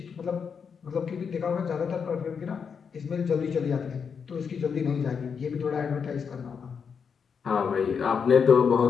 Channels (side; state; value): right; quieter; 6.4 dB